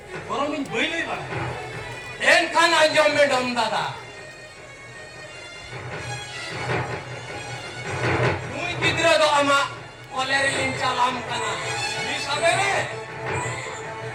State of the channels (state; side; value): identical; both; correlation 1.00